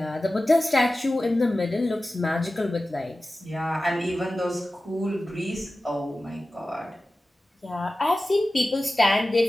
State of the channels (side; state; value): both; normal; correlation 0.95